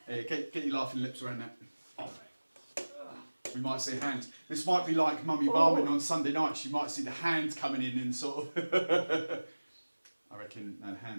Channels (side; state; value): both; inverted; correlation -1.00